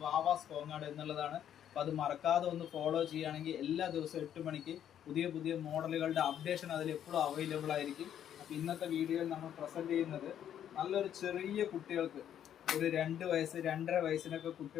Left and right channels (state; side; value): quieter; right; 10.0 dB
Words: വാവാസ് കോങ്ങാട് എന്നുള്ളതാണ്. അപ്പോൾ അത് മറക്കാതെ ഒന്ന് ഫോളോ ചെയ്യുകയാണെങ്കിൽ എല്ലാ ദിവസവും 8 മണിക്ക് പുതിയ പുതിയ മോഡലുകളുടെ അപ്ഡേഷൻ അതിൽ എപ്പോഴും അവൈലബിൾ ആയിരിക്കും. അപ്പോൾ ഇന്നത്തെ വീഡിയോയിൽ നമ്മൾ പ്രസൻറ്റ് ചെയ്യുന്നത് നല്ലൊരു ചെറിയ കുട്ടികൾക്ക് ഒരു 2 വയസ്സ് 2.5 വയസ്സിനൊക്കെ